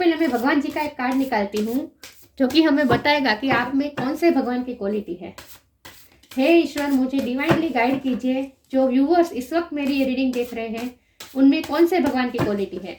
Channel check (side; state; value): both; identical; correlation 1.00